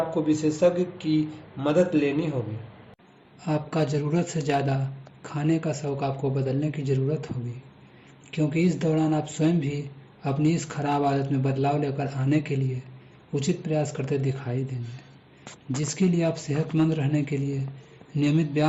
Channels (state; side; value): identical; both; correlation 1.00